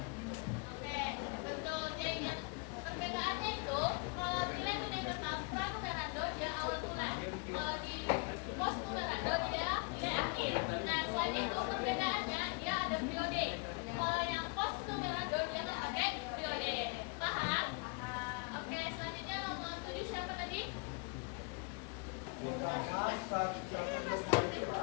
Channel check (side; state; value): right; quieter; 33.2 dB